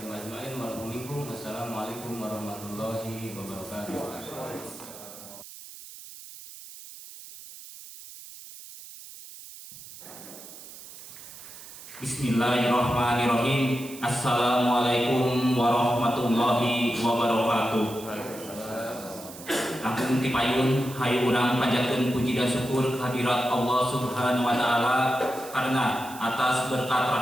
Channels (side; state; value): right; noise; hiss, 15 dB below the sound